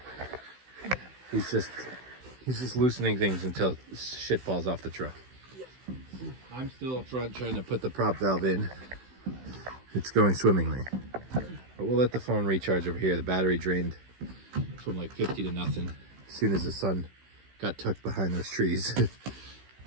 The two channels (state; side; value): late; left; 16 ms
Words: He's just loosening things until shit falls off the truck. I'm still up front trying to put the prop valve in. It's going swimmingly. But we'll let the phone recharge over here. The battery drained from like 50 to nothing as soon as the sun got tucked behind those trees.